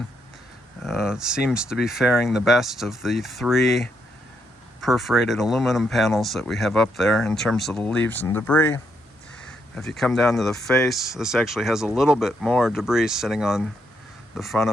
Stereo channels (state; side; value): normal; both; correlation 0.78